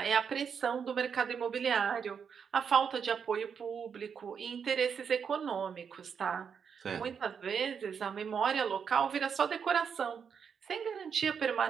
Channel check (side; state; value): left; quieter; 6.8 dB